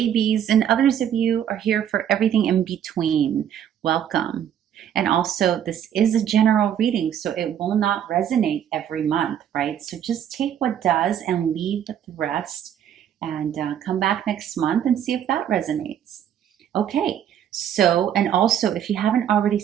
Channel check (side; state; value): left; quieter; 9.6 dB